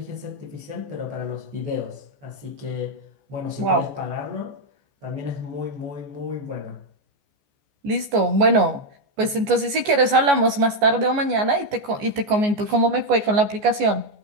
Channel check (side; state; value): left; late; 14 ms